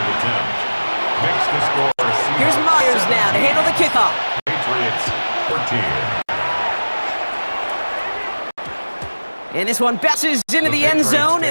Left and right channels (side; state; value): both; inverted; correlation -1.00